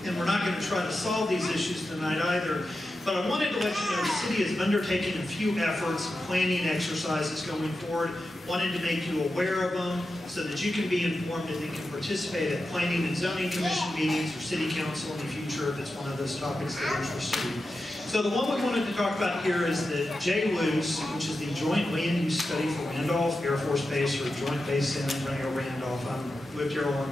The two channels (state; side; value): normal; both; correlation 0.91